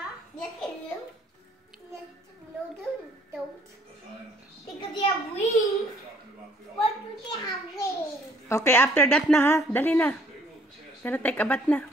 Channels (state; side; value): normal; both; correlation 0.61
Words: Yes, they do. Yes, no, they don't. Because they have wings. What do they have wings? Okay, after that na, ha? Dali na. Gonna take a bath na.